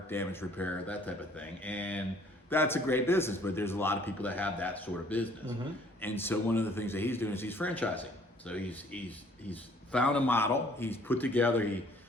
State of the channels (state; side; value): normal; both; correlation 0.59